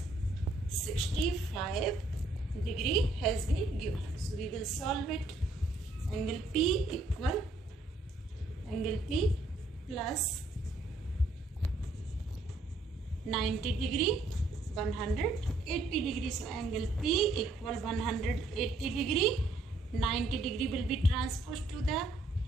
65 degree has been given. So we will solve it. Angle P equal angle P plus 90 degree 180 degree. So angle P equal 180 degree. 90 degree will be transposed to the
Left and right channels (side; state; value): left; quieter; 3.0 dB